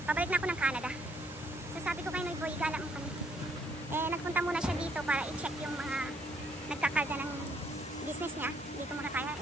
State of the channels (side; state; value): both; normal; correlation 0.68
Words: Pabalik na ako ng Canada. So sabi ko kay Noy Boy, gala mo kami. Eh, nagpunta muna siya dito para i-check yung mga nagkakarga ng business niya. Dito muna tayo.